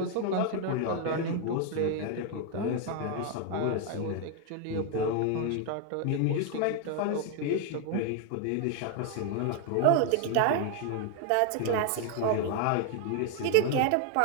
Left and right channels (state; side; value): different; both; correlation 0.01